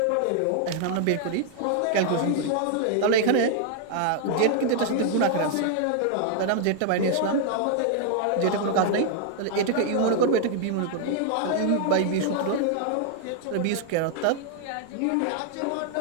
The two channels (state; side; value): different; both; correlation 0.00